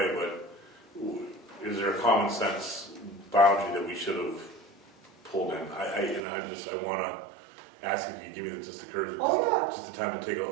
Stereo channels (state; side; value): drops out; left; at 6.2 s